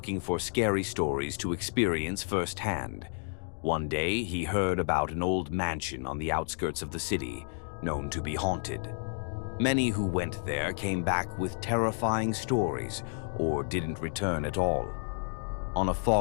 for scary stories to experience firsthand. One day, he heard about an old mansion on the outskirts of the city, known to be haunted. Many who went there came back with terrifying stories or didn't return at all. On a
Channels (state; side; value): silent; right; 57 dB below the other